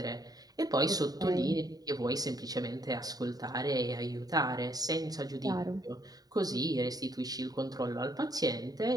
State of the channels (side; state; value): left; late; 0.18 ms